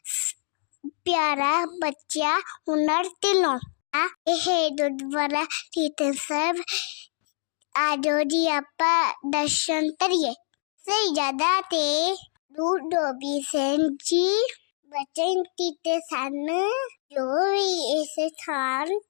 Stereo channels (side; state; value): right; silent; 61 dB below the other